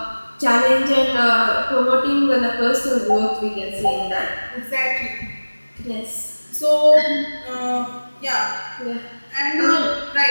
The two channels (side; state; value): both; inverted; correlation -1.00